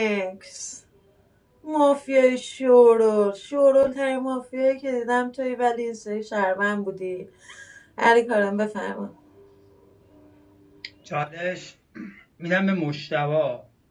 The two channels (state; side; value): identical; both; correlation 1.00